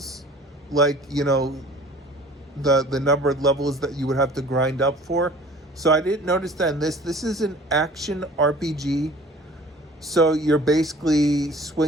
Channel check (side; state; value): both; normal; correlation 0.47